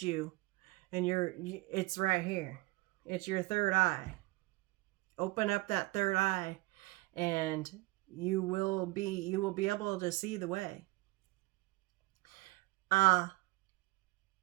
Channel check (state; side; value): quieter; left; 21.9 dB